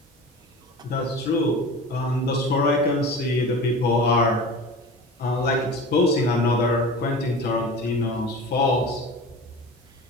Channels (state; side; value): normal; both; correlation 0.34